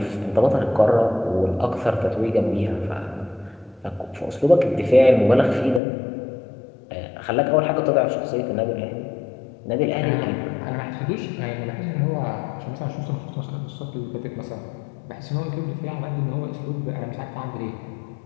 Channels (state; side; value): drops out; right; at 5.8 s